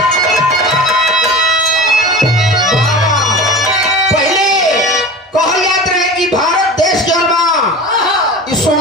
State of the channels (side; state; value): both; normal; correlation 0.34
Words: पहले कहल जात रहे कि भारत देश जौन बा ई